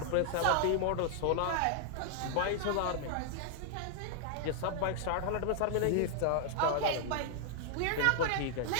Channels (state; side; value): different; both; correlation -0.01